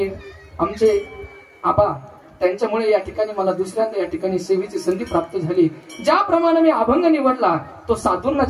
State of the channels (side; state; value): both; identical; correlation 1.00